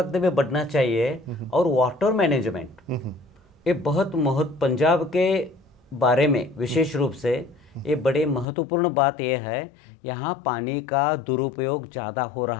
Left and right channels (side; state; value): right; drops out; at 8.5 s